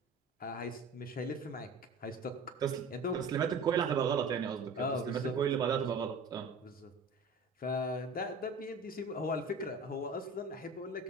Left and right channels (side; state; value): left; quieter; 3.4 dB